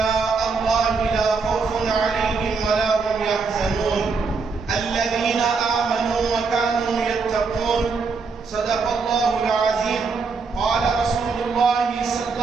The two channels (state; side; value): quieter; left; 4.7 dB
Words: الله لا خوف عليهم ولا هم يحزنون الذين آمنوا وكانوا يتقون. صدق الله العظيم. قال رسول الله صلى